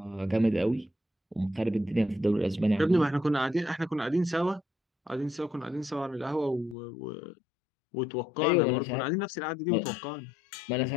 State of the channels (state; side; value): drops out; right; at 6.8 s